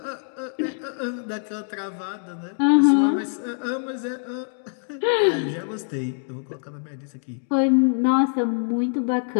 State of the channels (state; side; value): silent; right; 60 dB below the other